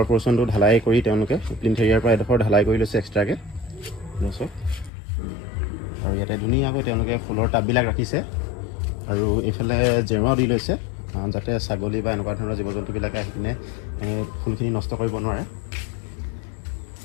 পৰ্চনটো ঢালাই কৰি তেওঁলোকে প্লিন্থ এৰিয়াৰ পৰা এডোখৰ ঢালাই কৰি লৈছে এক্সট্ৰাকৈ লৈছে। আৰু ইয়াতে ধুনীয়াকৈ তেওঁলোকে ফুলৰ টাববিলাক ৰাখিছে আৰু এইফালে জেওৰাও দি লৈছে যাতে ছাগলী বা এনেকুৱা ধৰণৰ জীৱ জন্তুবিলাকে আহি কিনে ফুলখিনি নষ্ট কৰিব নোৱাৰে।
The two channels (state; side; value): drops out; right; at 4.9 s